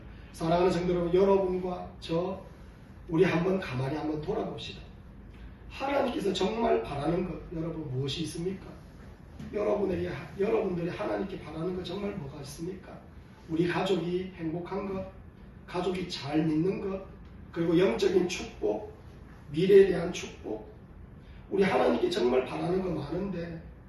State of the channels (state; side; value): identical; both; correlation 1.00